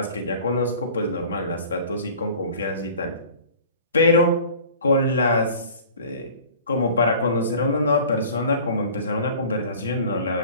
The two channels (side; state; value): both; inverted; correlation -0.45